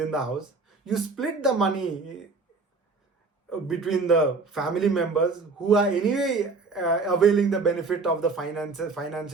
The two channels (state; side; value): quieter; left; 4.1 dB